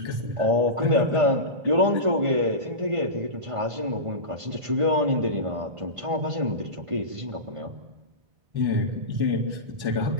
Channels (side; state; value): left; late; 1.5 ms